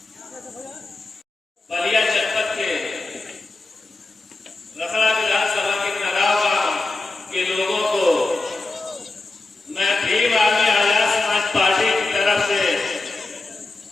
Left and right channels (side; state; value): right; quieter; 3.3 dB